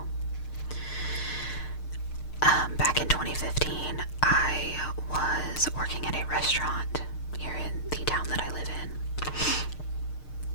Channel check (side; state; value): right; late; 6.6 ms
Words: Back in 2015, I was working at a restaurant here in the town that I live in.